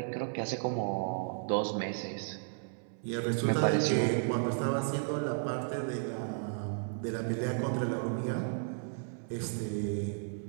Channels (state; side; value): silent; left; 55 dB below the other